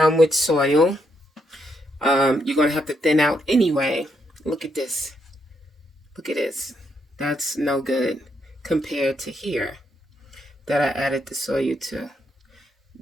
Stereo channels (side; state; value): both; normal; correlation 0.77